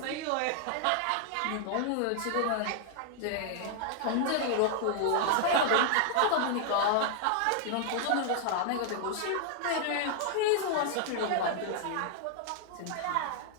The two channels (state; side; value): different; both; correlation 0.00